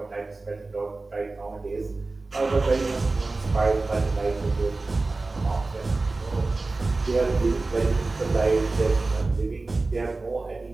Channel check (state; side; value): quieter; left; 3.4 dB